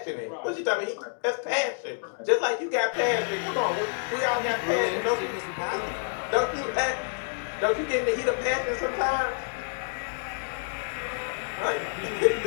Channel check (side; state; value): right; silent; digital silence